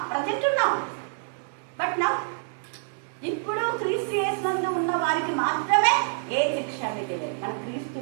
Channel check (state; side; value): silent; left; digital silence